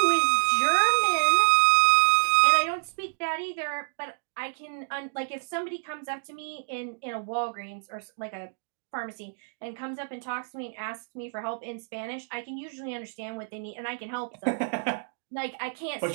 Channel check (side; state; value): left; silent; digital silence